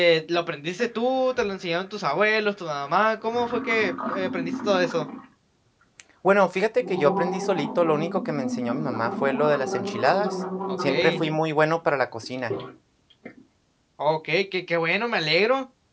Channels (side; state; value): both; identical; correlation 1.00